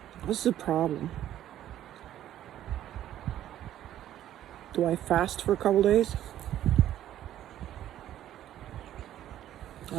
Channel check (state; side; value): quieter; left; 12.1 dB